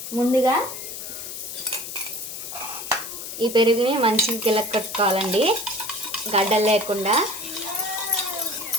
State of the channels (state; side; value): noise; left; hiss, 8 dB below the sound